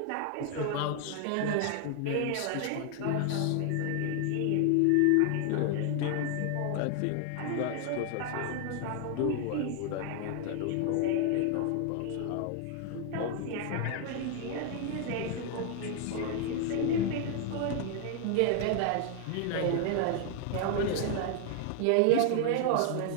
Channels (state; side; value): different; both; correlation 0.00